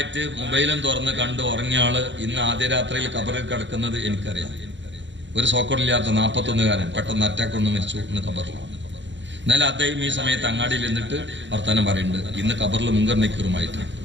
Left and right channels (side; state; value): left; late; 0.53 ms